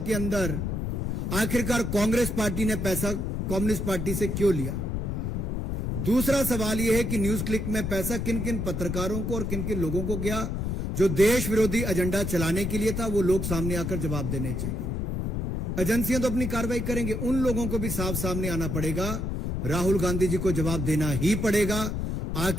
अंदर आखिरकार कांग्रेस पार्टी ने पैसा कम्युनिस्ट पार्टी से क्यों लिया? दूसरा सवाल यह है कि न्यूज क्लिक में पैसा किन किन पत्रकारों को और किन किन लोगों को गया जो देश विरोधी एजेंडा चलाने के लिए था। वो लोग सामने आकर जवाब देने चाहिए। एजेंसियां तो अपनी कार्रवाई करेंगे, उन लोगों को भी साफ सामने आना पड़ेगा। राहुल गांधी जी को जवाब देना ही पड़ेगा।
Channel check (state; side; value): noise; left; rumble, 1 dB below the sound